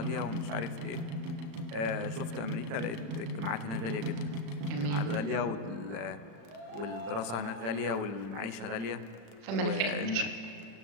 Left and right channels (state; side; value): late; left; 35 ms